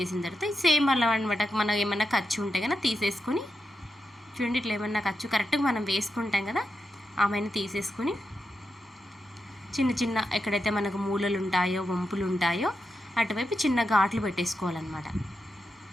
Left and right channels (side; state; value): both; normal; correlation 0.87